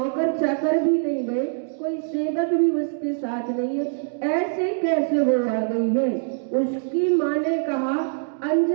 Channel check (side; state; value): left; silent; digital silence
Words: चाकर भी नहीं गए, कोई सेवक भी उसके साथ नहीं है, ऐसे कैसे वो आ गई है? उसकी माँ ने कहा,